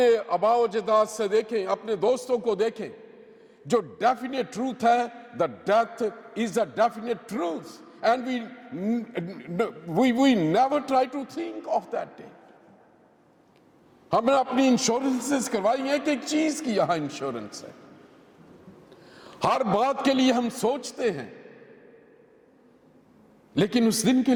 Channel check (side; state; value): both; identical; correlation 1.00